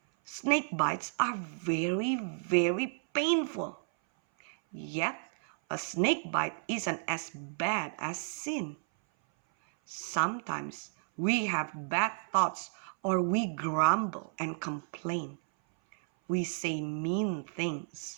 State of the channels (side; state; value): left; silent; 56 dB below the other